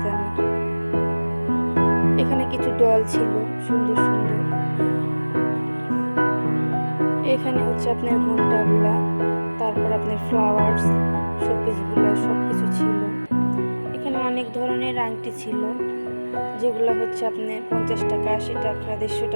দামের। এখানে কিছু ডল ছিল সুন্দর সুন্দর। এখানে হচ্ছে আপনার ঘন্টাগুলা, তারপর আপনার ফ্লাওয়ার্স, শোপিসগুলো সব কিছু ছিল। এখানে অনেক ধরনের আংটি ছিল, যেগুলো হচ্ছে আপনার 50 টাকা, 80 টাকা, 150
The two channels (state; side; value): inverted; both; correlation -1.00